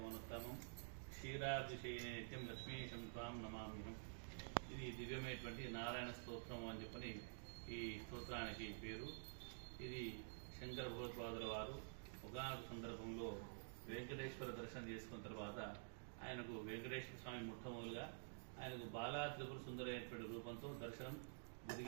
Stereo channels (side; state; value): left; silent; digital silence